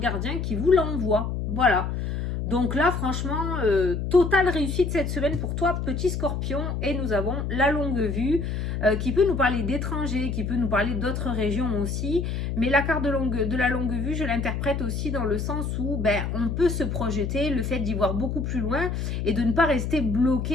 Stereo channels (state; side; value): noise; left; hum, 2 dB below the sound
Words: qui vous l'envoient. Voilà. Donc là, franchement, totale réussite cette semaine pour toi, petit scorpion. Et nous avons la longue vue qui peut nous parler d'étrangers, qui peut nous parler d'autres régions aussi. Mais la carte de la longue vue, je l'interprète aussi dans le sens où on peut se projeter, le fait d'y voir beaucoup plus loin et de ne pas rester